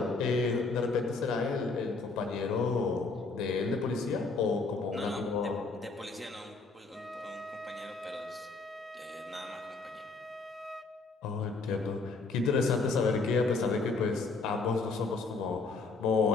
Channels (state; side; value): quieter; right; 3.9 dB